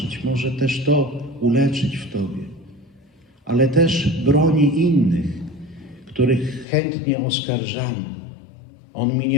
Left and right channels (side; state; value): right; drops out; at 6.7 s